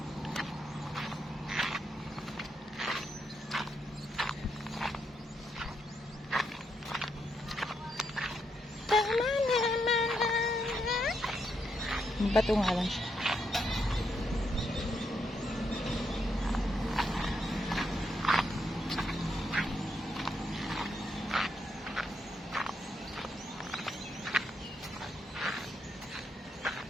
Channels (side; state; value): both; normal; correlation 0.79